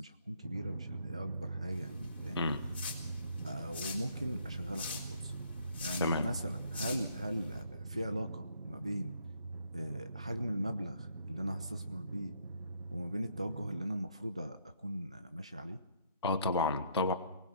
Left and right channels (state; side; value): inverted; both; correlation -0.68